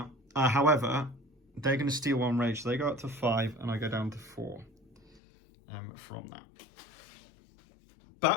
However, they're going to steal 1 rage, so they go up to 5, and I go down to 4 from that.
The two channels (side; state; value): right; drops out; at 5.2 s